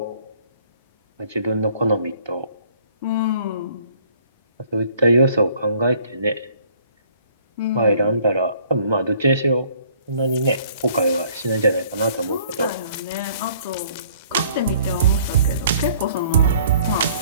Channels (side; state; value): both; inverted; correlation -0.58